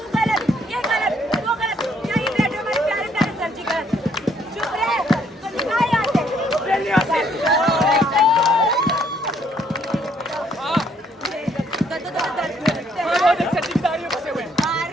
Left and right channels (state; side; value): normal; both; correlation 0.67